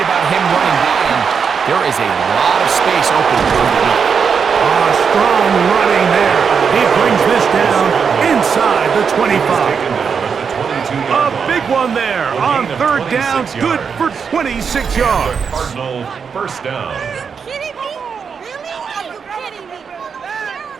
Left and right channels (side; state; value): left; quieter; 6.3 dB